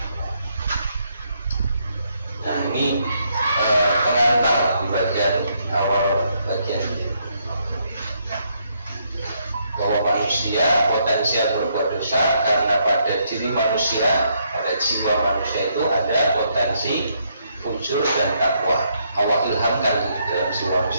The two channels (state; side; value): inverted; both; correlation -0.74